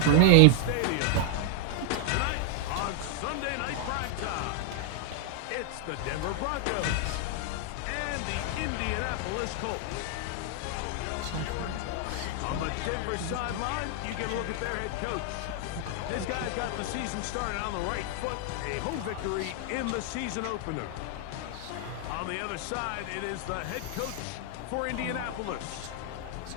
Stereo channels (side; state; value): both; different; correlation 0.00